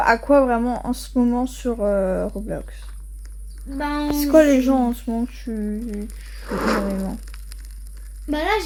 quoi vraiment en ce moment sur Roblox? Ben, c'est quoi les gens en ce moment que tu joues énormément? Bah là,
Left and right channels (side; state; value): both; identical; correlation 1.00